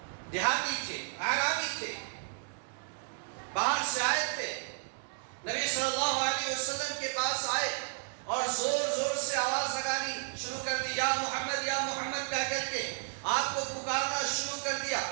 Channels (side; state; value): left; silent; digital silence